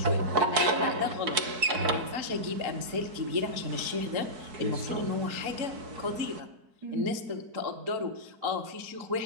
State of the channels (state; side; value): late; left; 4.6 ms